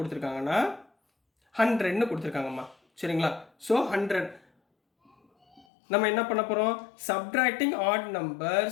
100ன்னு கொடுத்துருக்காங்கம்மா. சரிங்களா, ஸோ 100 நம்ம என்ன பண்ண போகிறோம், சப்ட்ராக்டிங் ஆட்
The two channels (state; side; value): drops out; right; at 5.7 s